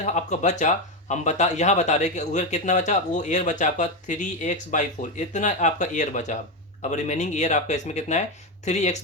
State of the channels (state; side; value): normal; both; correlation 0.10